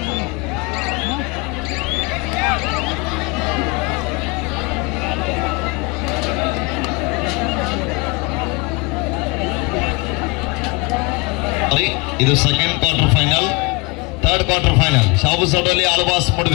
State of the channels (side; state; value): right; quieter; 26.9 dB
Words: ಇದು second quarter final. Third quarter final Shahu Sadoli Alvas